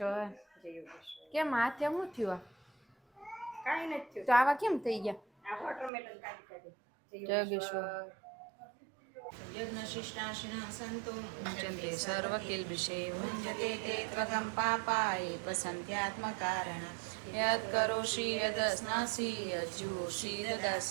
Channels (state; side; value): drops out; left; at 5.9 s